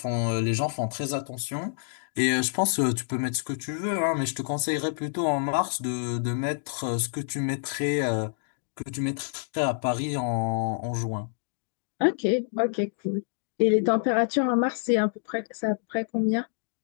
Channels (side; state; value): right; silent; digital silence